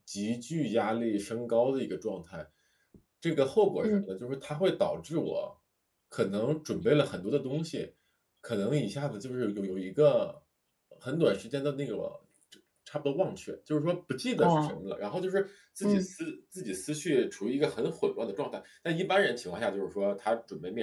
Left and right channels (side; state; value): both; identical; correlation 1.00